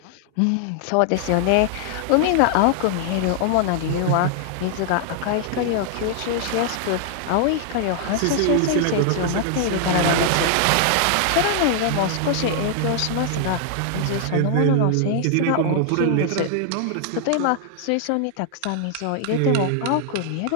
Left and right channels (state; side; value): different; both; correlation 0.00